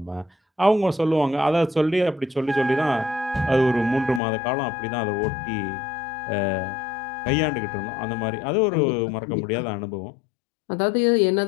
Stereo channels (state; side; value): drops out; right; at 4.2 s